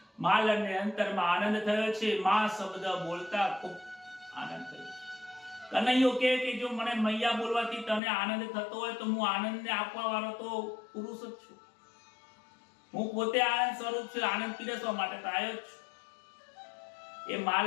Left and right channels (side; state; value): right; drops out; at 8.0 s